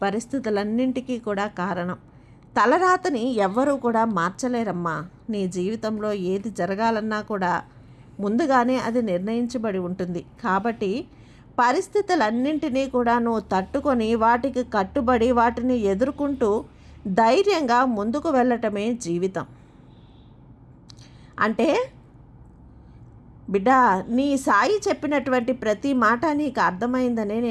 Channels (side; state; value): both; identical; correlation 1.00